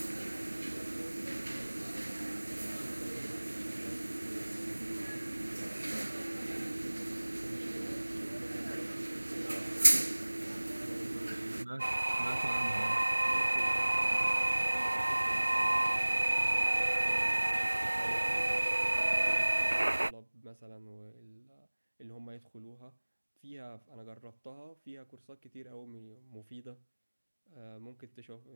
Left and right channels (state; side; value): inverted; both; correlation -1.00